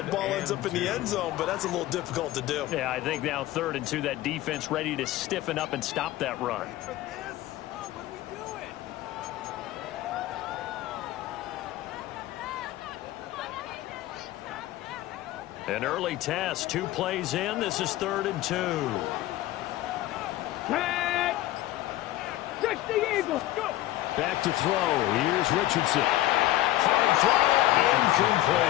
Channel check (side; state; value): right; quieter; 15.5 dB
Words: ball ends up in the end zone, but that's a little difficult to do. Yeah, I think now 3rd and 2, that defense ready to stiffen up and stop that run. An early test, 2 plays in. This is 3rd and 2. 10, 60 Eagles, go! Back to throw. Here's Richardson. Hard throw,